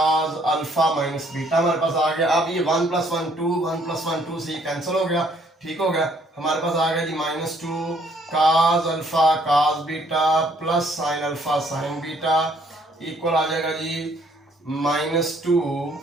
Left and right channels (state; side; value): normal; both; correlation 0.64